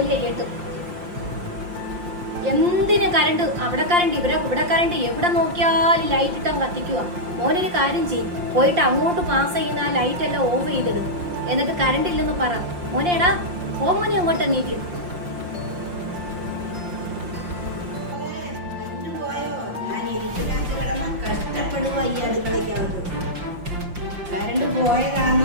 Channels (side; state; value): left; late; 5.7 ms